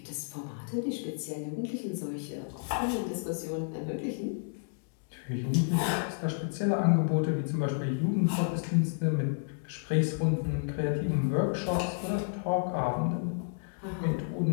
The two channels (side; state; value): right; silent; digital silence